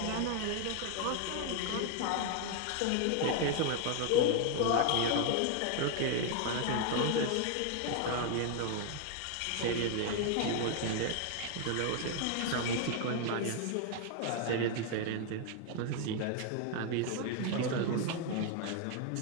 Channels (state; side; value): different; both; correlation 0.01